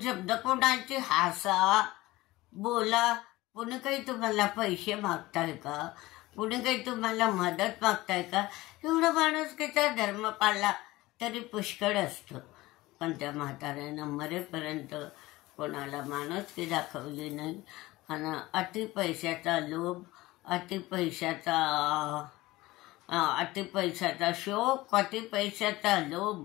शब्द कोणाची हसा बोला. कुणी काही तुम्हाला पैसे मागताय का? कुणी काही तुम्हाला मदत मागताय का? एवढं माणुसकीचा धर्म पाळला तरी पुष्कळ असतं. पण त्या म्हाताऱ्यानं मरेपर्यंत कोणाला माणुसकी दाखवली नाही. आणि अति पैशाचा लोभ, अति पैशाचा शोक, अति पैशाचा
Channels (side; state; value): right; quieter; 19.0 dB